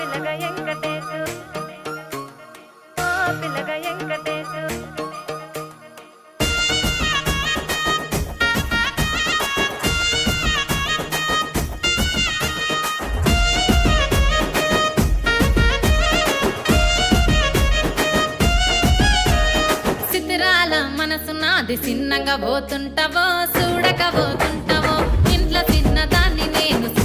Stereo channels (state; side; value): identical; both; correlation 1.00